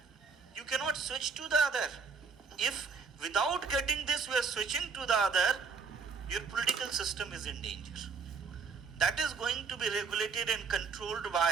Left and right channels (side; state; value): left; quieter; 5.3 dB